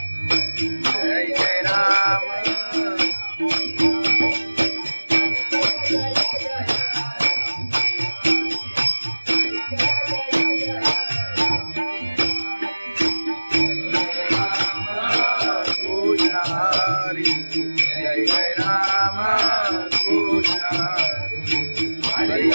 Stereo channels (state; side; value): inverted; both; correlation -1.00